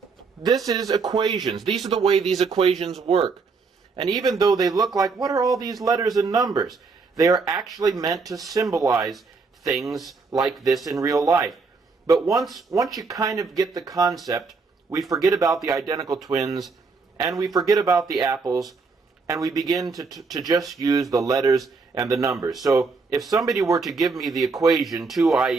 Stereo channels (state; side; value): quieter; left; 4.5 dB